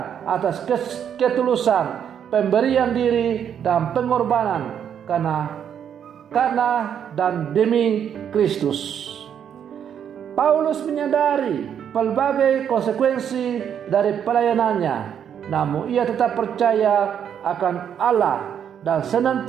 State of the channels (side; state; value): left; quieter; 8.7 dB